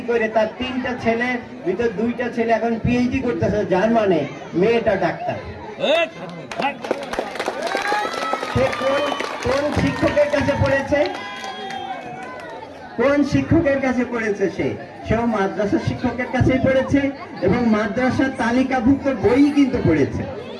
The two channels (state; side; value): identical; both; correlation 1.00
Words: করে তার 3টা ছেলে ভিতর 2টা ছেলে এখন পিএইচডি করতেছে জার্মানে, মেয়েটা ডাক্তার। সে কোন শিক্ষকের কাছে পড়েছে? কোন শিক্ষকের কাছে পড়েছে? সেও মাদ্রাসা শিক্ষকের কাছেই পড়েছে এবং মাদ্রাসার তালিকাভুক্ত বই কিন্তু পড়েছে।